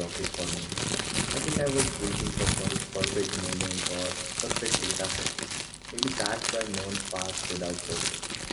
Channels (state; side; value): identical; both; correlation 1.00